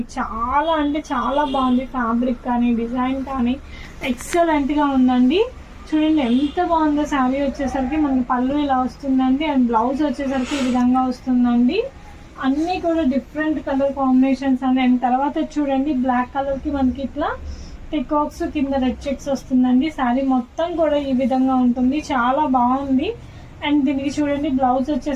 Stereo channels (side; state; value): both; identical; correlation 1.00